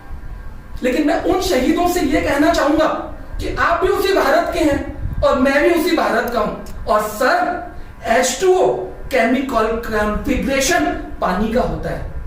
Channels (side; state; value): both; identical; correlation 1.00